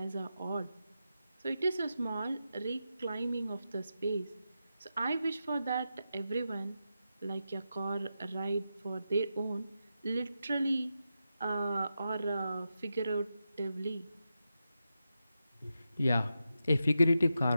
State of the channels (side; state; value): both; inverted; correlation -0.88